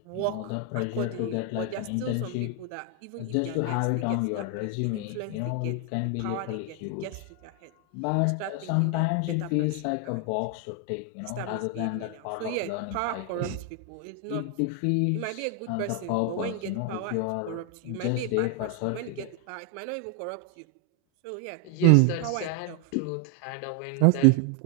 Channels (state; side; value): different; both; correlation 0.00